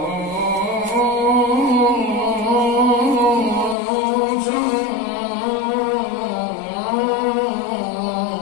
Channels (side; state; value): right; drops out; at 3.8 s